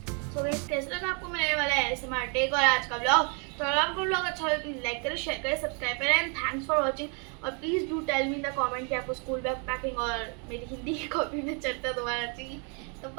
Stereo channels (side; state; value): left; quieter; 37.0 dB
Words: तो कैसे लगा आपको मेरे वाला ASMR टेक और आज का ब्लॉग? तो अगर आपको ब्लॉग अच्छा लगे तो लाइक करें, शेयर करें, सब्सक्राइब करें एंड थैंक्स फॉर वाचिंग। और please do tell me in the comment कि आपको स्कूल बैग पैकिंग और मेरी हिंदी की कॉपी में चर्चा दोबारा चाहिए। तो